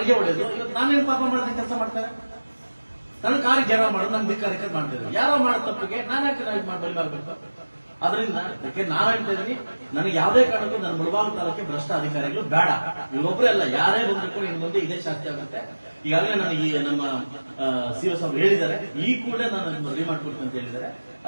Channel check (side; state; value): both; inverted; correlation -1.00